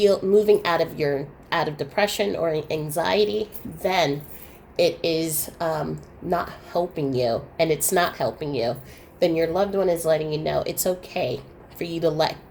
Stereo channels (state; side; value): identical; both; correlation 1.00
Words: out of depression or anxiety, then it is not helping you, and it's not helping you, then your loved one is letting you know it's okay for you to let